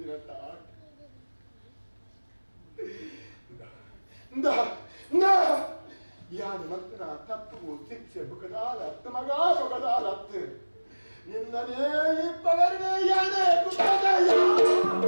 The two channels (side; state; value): both; inverted; correlation -1.00